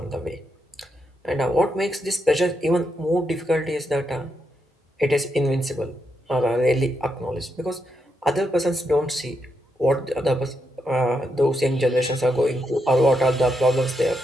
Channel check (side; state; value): both; normal; correlation 0.82